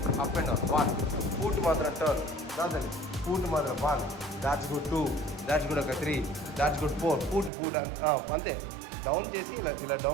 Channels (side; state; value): left; drops out; at 7.5 s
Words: అప్ అండ్ డౌన్ 1 ఫుట్ మాత్రం టర్న్ రాదండి. ఫుట్ మాత్రం 1 దాట్స్ గుడ్. 2 that's good. ఒక 3 దాట్స్ గుడ్. 4 ఫుట్ అంతే. Down చేసి ఇలా